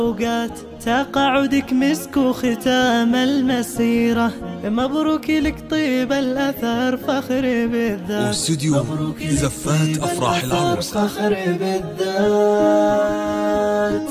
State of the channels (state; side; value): identical; both; correlation 1.00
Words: تقاعدك مسك وختام المسيرة، مبروك لك طيب الأثر فخر بالذات. واستوديو زفات أفراح العروس فخر بالذات.